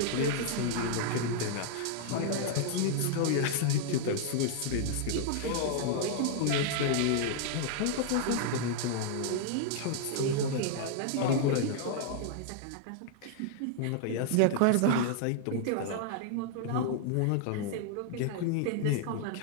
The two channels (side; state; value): both; different; correlation -0.01